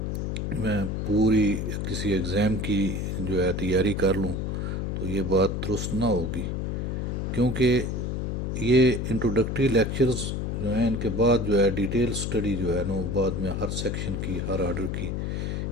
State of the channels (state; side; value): noise; left; hum, 2 dB below the sound